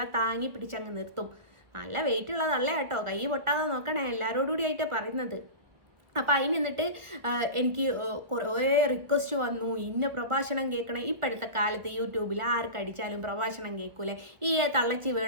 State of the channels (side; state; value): left; late; 1.5 ms